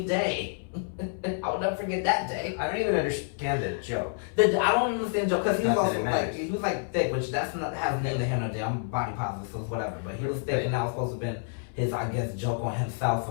Day? I will never forget that day. I don't even understand the joke. I don't understand the joke, because he was also like, he was like thick, which that's not, has neither here nor there. I'm body positive, so it's whatever. But he was thick, and that was supposed to have been his, I guess, joke on himself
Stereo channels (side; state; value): right; silent; 59 dB below the other